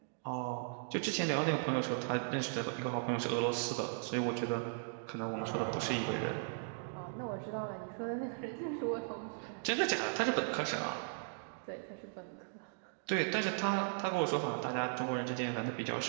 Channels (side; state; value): left; silent; digital silence